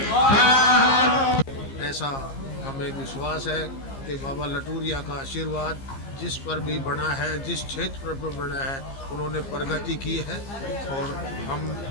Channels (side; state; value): right; late; 15 ms